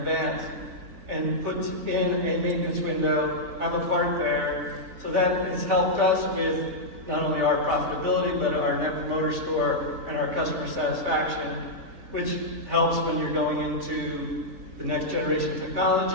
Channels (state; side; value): late; left; 3.3 ms